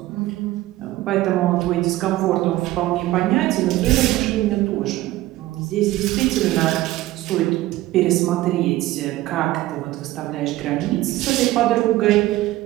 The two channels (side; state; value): left; quieter; 16.8 dB